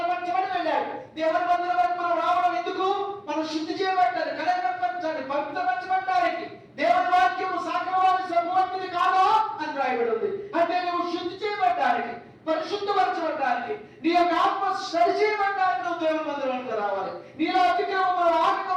వెళ్ళాడు. దేవుని మందిరం వరకు మనం రావడం ఎందుకు? మనం శుద్ధి చేయబడ్డారు, కనబడి పవిత్రపరచబడ్డానికి. దేవుని వాక్యము సాగవాని సమూర్తిని కాదా అని రాయబడి ఉంది. అంటే నువ్వు శుద్ధి చేయబడ్డానికి, పరిశుద్ధపరచబడ్డానికి, నీ యొక్క ఆత్మ సరి చేయబడ్డానికి నువ్వు దేవుని మందిరానికి రావాలి. నీలో అతిక్రమములు,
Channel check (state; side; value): identical; both; correlation 1.00